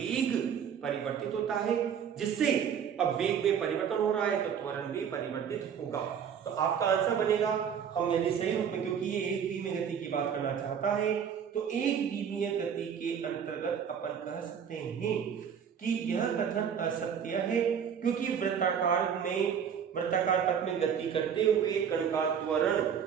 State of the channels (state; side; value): quieter; left; 7.8 dB